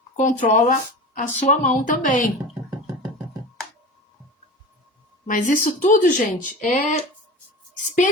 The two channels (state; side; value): normal; both; correlation 0.32